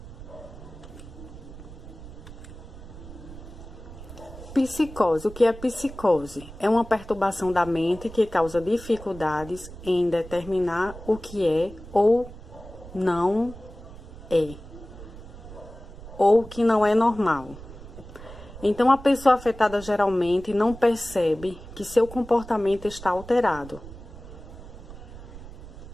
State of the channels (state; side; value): noise; right; rumble, 15 dB below the sound